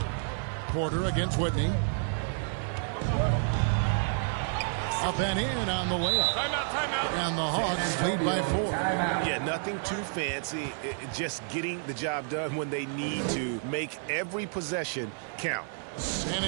Porter against Whitney. Up and in on the layup. Timeout. And the Hawks lead by 4. Yeah, nothing too fancy. Just getting the job done when they need to. Make every possession count. San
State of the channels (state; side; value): silent; left; 58 dB below the other